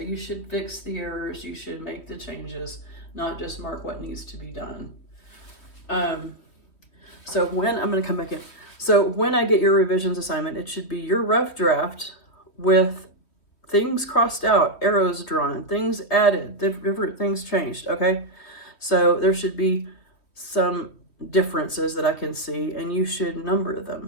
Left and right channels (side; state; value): right; late; 3.3 ms